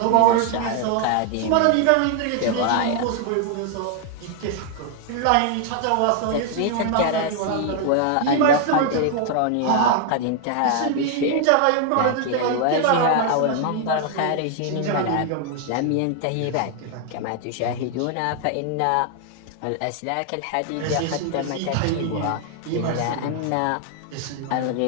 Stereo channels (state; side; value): different; both; correlation 0.00